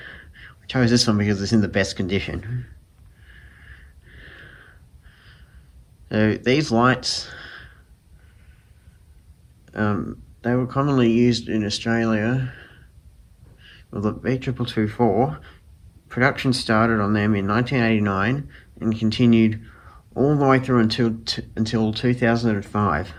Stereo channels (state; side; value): identical; both; correlation 1.00